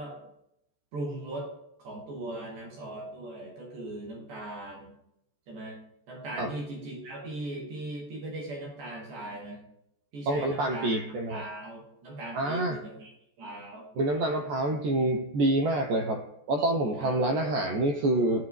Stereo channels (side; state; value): left; late; 14 ms